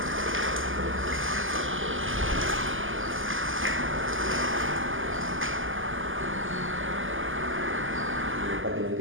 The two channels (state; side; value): late; left; 0.58 ms